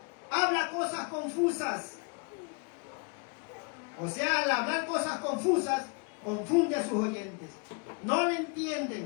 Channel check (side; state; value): right; quieter; 33.8 dB